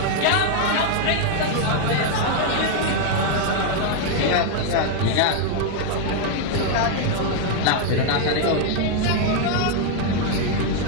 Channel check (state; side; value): different; both; correlation 0.00